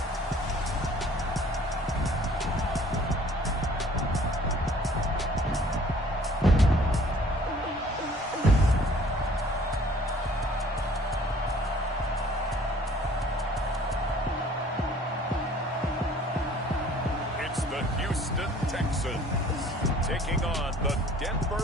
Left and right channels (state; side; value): normal; both; correlation 0.54